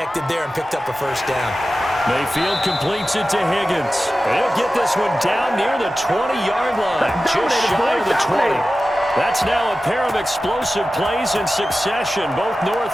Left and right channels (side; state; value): both; normal; correlation 0.94